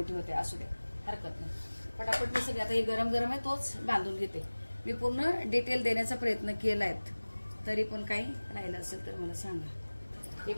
होते, असू दे हरकत नाही. पटापट मी सगळे आता हे गरम गरम आहे तोच बांधून घेते. मी पूर्ण डिटेल देण्याचा प्रयत्न केलाय, तरी पण काही राहिलं असेल तर मला सांगा. हे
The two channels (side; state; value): both; inverted; correlation -1.00